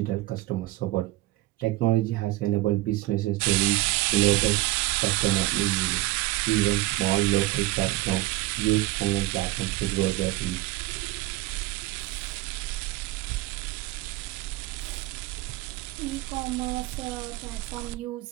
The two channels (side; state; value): left; quieter; 18.2 dB